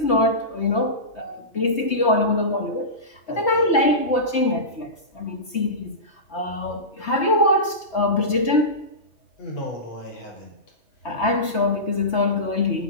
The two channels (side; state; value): right; late; 3.3 ms